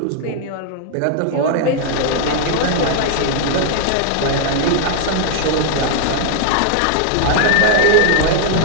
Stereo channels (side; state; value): both; different; correlation 0.00